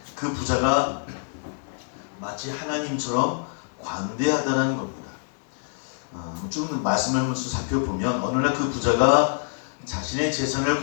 그 부자가 마치 하나님처럼 관대하다는 겁니다. 쭉 말씀을 한번 살펴보면, 어느 날 그 부자가 자신의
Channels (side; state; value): right; silent; digital silence